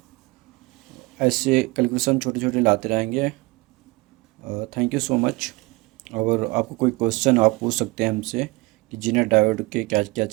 ऐसे कैलकुलेशन छोटे छोटे लाते रहेंगे। Thank you so much. और आपको कोई क्वेश्चन आप पूछ सकते हैं हमसे कि जीनर डायोड के क्या क्या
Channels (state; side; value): quieter; left; 23.9 dB